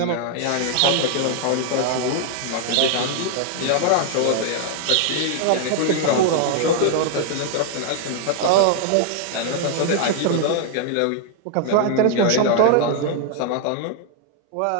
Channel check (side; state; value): both; different; correlation 0.00